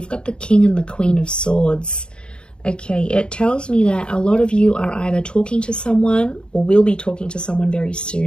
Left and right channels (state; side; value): late; right; 0.051 ms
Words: got the King and the Queen of Swords. Okay, it tells me that a lot of you are either talking to someone or will be talking to someone very